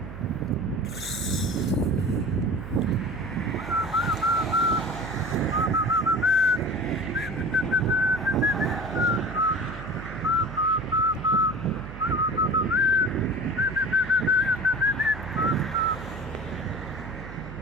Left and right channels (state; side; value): noise; right; hum, 12 dB below the sound